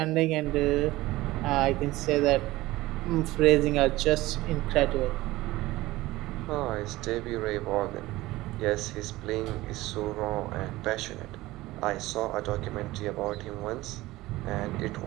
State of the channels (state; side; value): quieter; left; 18.3 dB